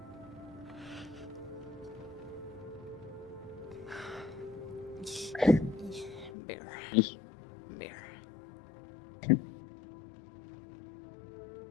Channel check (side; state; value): right; drops out; at 6.3 s